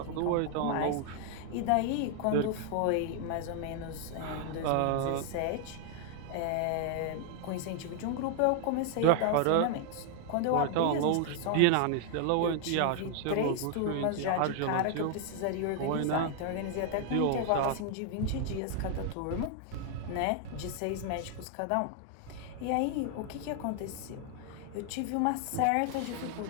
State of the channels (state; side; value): different; both; correlation 0.00